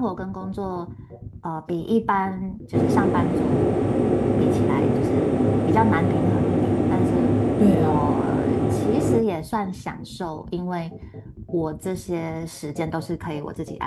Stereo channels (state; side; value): identical; both; correlation 1.00